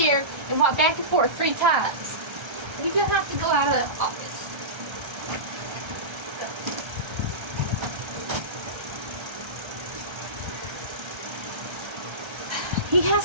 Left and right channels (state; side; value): late; left; 1.3 ms